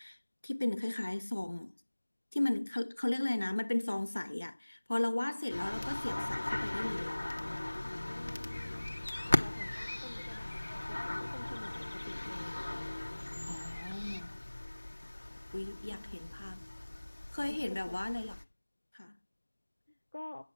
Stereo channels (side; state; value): both; inverted; correlation -1.00